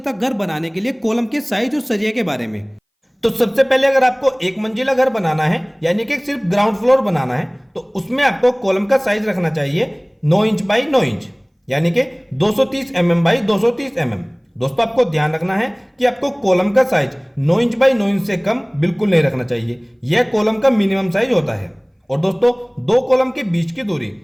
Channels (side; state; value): both; identical; correlation 1.00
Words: तक घर बनाने के लिए कॉलम के साइज और सरिया के बारे में। तो सबसे पहले अगर आपको एक मंजिला घर बनाना है यानी कि सिर्फ ग्राउंड फ्लोर बनाना है, तो उसमें आपको कॉलम का साइज रखना चाहिए 9 इंच बाई 9 इंच यानी कि 230 mm बाई 230 mm। दोस्तों, आपको ध्यान रखना है कि आपको कॉलम का साइज 9 इंच बाई 9 इंच से कम बिल्कुल नहीं रखना चाहिए, यह कॉलम का मिनिमम साइज होता है। और दोस्तों, 2 कॉलम के बीच की दूरी